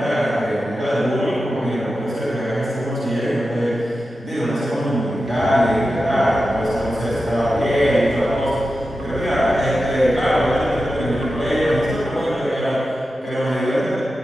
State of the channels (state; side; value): normal; both; correlation 0.91